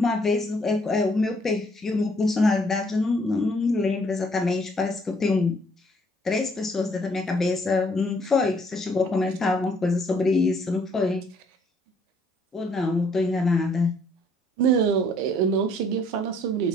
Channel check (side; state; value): both; normal; correlation 0.64